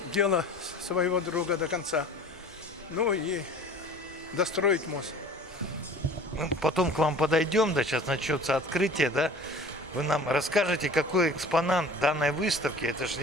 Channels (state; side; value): normal; both; correlation 0.44